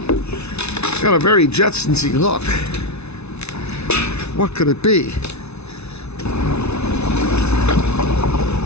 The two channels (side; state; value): right; late; 0.81 ms